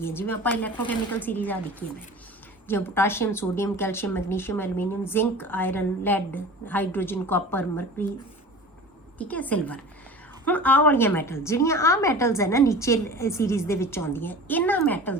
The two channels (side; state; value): both; normal; correlation 0.38